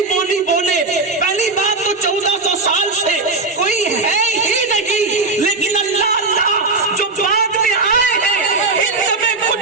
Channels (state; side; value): quieter; left; 3.6 dB